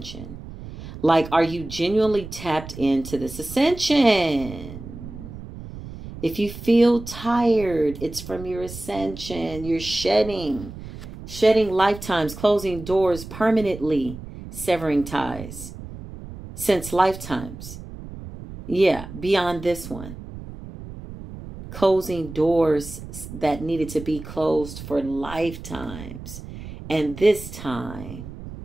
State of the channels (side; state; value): right; noise; rumble, 12 dB below the sound